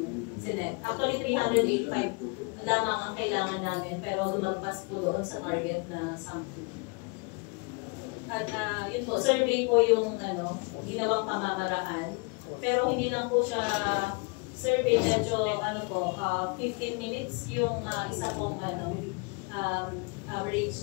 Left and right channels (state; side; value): quieter; right; 30.5 dB